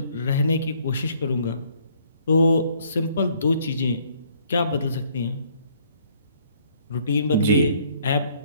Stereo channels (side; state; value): both; inverted; correlation -0.63